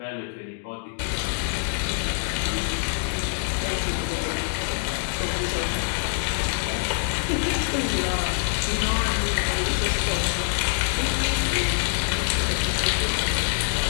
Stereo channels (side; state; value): right; silent; 62 dB below the other